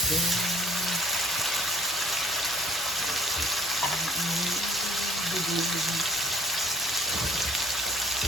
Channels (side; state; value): right; noise; hum, 25 dB below the sound